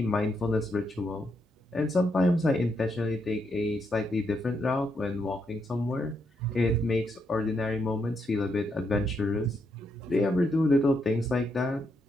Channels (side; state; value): both; normal; correlation 0.79